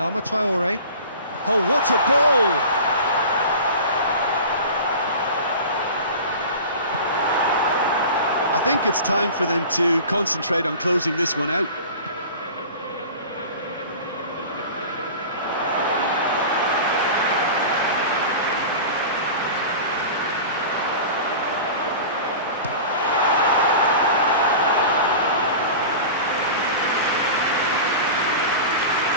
Traore. Oh, what a ball! I think it's time for them to concentrate on closing this one out.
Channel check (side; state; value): both; inverted; correlation -0.35